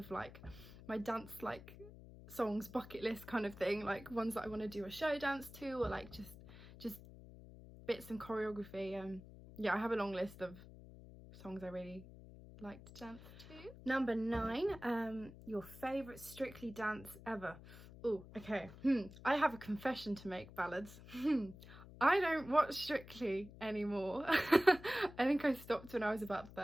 like my dance like songs bucket list kind of thing, like ones that I want to do a show dance to, or like just bits and choreography. Yeah, I have a long list of songs I really like to dance to. Number 9, your favourite Strictly dance ever. Oh, okay. I have a confession to make, ballads. I don't watch Strictly anymore. I think I stopped when I was about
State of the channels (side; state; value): left; noise; hum, 17 dB below the sound